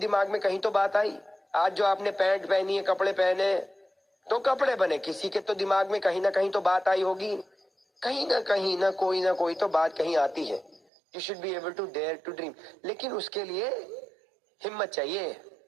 में कहीं तो बात आई। आज जो आपने पैंट पहनी है, कपड़े पहने, तो कपड़े बने, किसी के तो दिमाग में कहीं ना कहीं तो बात आई होगी। कहीं ना कोई तो बात कहीं आती है। You should be able to dare to dream. लेकिन उसके लिए हिम्मत चाहिए,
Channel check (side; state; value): left; drops out; at 10.8 s